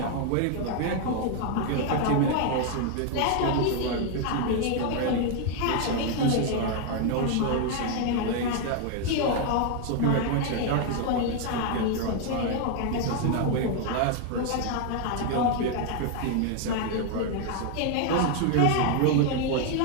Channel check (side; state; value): both; different; correlation 0.01